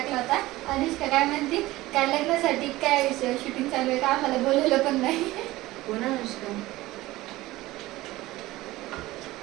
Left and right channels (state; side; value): quieter; left; 18.0 dB